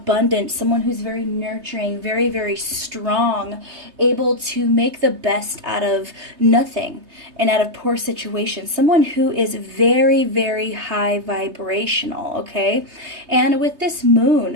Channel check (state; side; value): late; left; 3.2 ms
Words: someone who's very nurturing, very, very strong, able to make the best out of nothing and out of poor situations, someone who is very, very high vibrational, okay? And with this